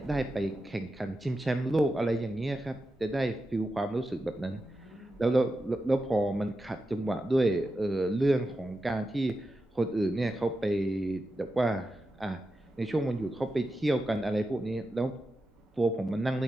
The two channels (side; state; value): both; normal; correlation 0.89